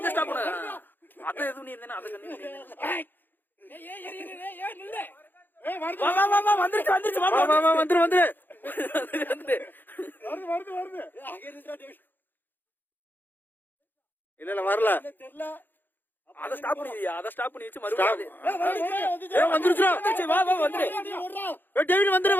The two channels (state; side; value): late; right; 0.091 ms